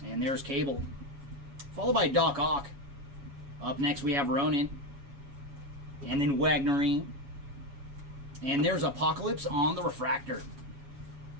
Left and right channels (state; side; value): late; left; 7.2 ms